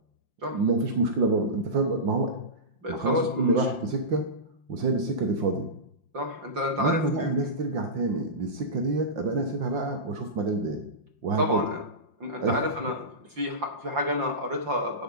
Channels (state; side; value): late; left; 5.7 ms